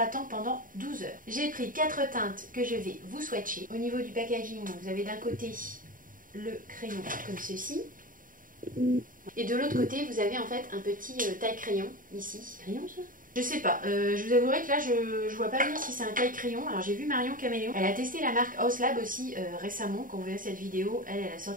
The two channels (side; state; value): left; late; 0.40 ms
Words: pendant 12 heures. J'ai pris 4 teintes que je vais vous swatcher. Au niveau du packaging, vous avez d'un côté le crayon comme ceci. Et de l'autre côté, vous avez en fait un petit taille-crayon ici. Crayon ça ? Je sais pas, je vous avouerai que là je vois pas bien si c'est un taille-crayon. Alors j'ai vu Marion Caméléon, elle a testé la marque Haus Lab aussi récemment. Quand vous verrez cette vidéo, elle a